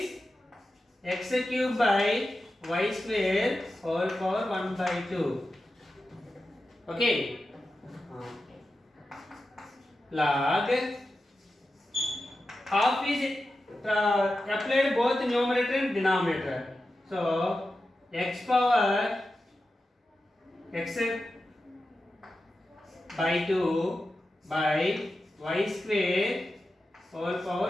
x cube by y square whole power 1 by 2. Okay. Log half is applied both numerator and denominator. So x power x by 2 by y square whole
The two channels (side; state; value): both; normal; correlation 0.91